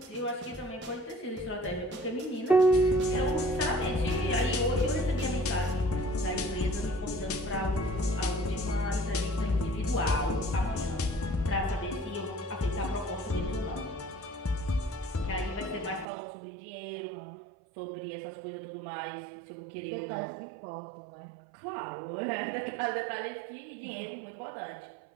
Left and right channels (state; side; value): drops out; left; at 16.1 s